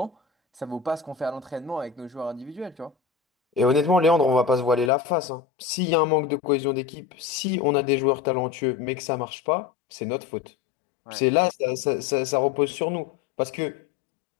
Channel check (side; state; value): right; drops out; at 4.9 s